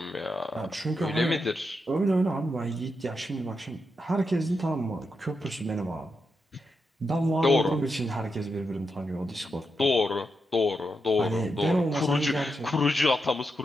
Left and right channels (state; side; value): normal; both; correlation 0.85